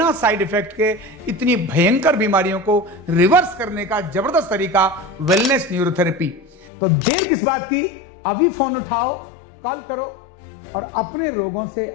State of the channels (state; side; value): drops out; right; at 6.7 s